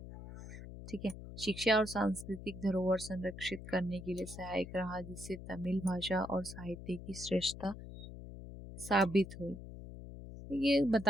ठीक है। शिक्षा और सांस्कृतिक धरोहर संरक्षित करने के लिए सहायक रहा, जिससे तमिल भाषा और साहित्य की श्रेष्ठता साबित हुई। तो ये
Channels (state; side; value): noise; left; hum, 12 dB below the sound